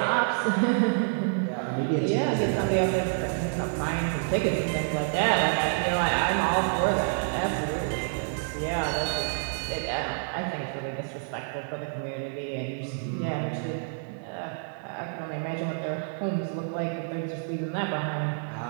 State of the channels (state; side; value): silent; left; digital silence